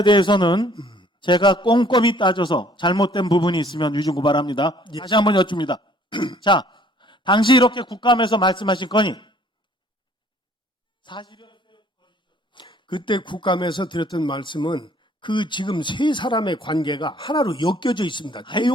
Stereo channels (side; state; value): both; normal; correlation 0.58